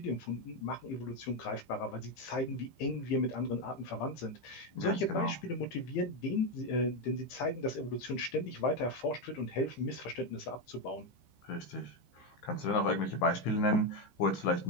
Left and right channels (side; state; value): right; late; 15 ms